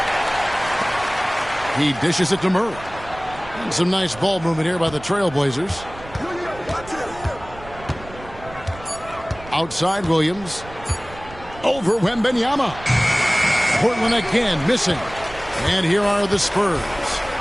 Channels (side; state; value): right; noise; rumble, 17 dB below the sound